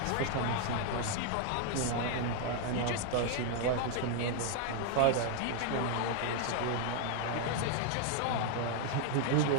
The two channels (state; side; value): different; both; correlation 0.00